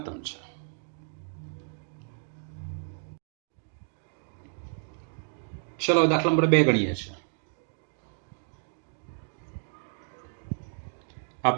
છે. ચલો દાખલા નંબર 2 ગણીએ છીએ. આ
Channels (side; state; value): left; silent; digital silence